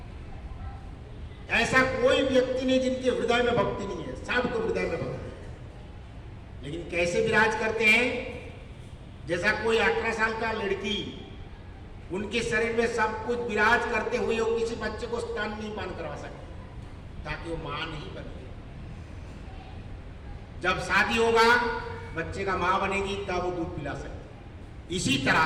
ऐसा कोई व्यक्ति नहीं जिनके हृदय में भक्ति नहीं है, सबके हृदय में भक्ति है। लेकिन कैसे विराज करते हैं? जैसा कोई 18 साल का लड़की, उनके शरीर में सब कुछ विराज करते हुए वो किसी बच्चे को स्तन नहीं पान करवा सकते, ताकि वो मां नहीं बने। जब शादी होगा, बच्चे का मां बनेगी, तब वो दूध पिला सकती। इसी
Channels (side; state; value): both; identical; correlation 1.00